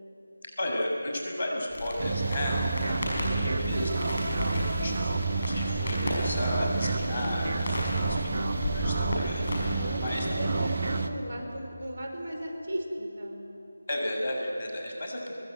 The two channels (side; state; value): both; inverted; correlation -0.85